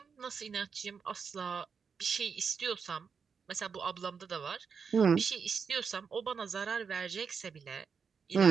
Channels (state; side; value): quieter; left; 6.0 dB